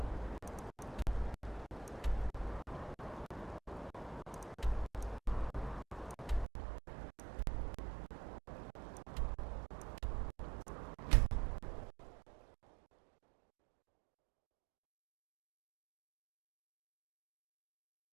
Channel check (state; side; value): drops out; left; at 6.5 s